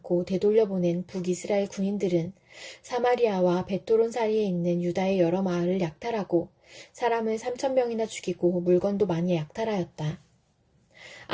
되돌려보낸 북이스라엘 군인들은 사마리아와 베토론 사이에 있는 유다의 여러 마을을 약탈하고 사람을 3,000명이나 죽이고 물건도 많이 약탈하였다.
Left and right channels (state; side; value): identical; both; correlation 1.00